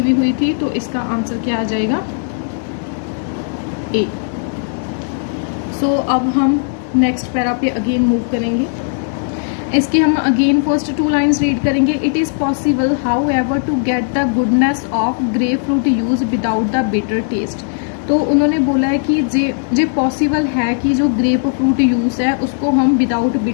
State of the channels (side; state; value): right; silent; digital silence